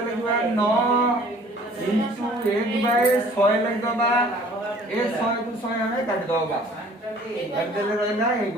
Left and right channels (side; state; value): both; normal; correlation 0.53